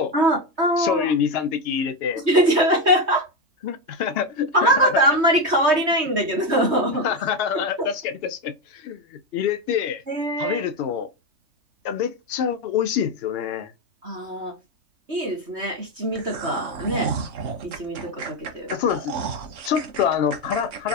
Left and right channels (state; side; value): late; left; 3.2 ms